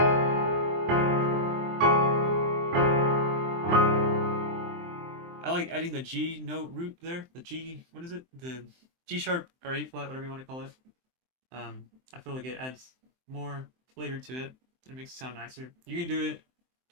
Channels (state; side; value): late; left; 23 ms